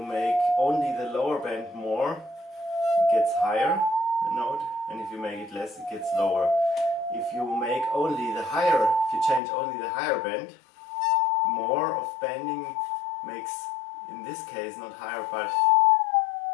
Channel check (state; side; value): drops out; right; at 9.4 s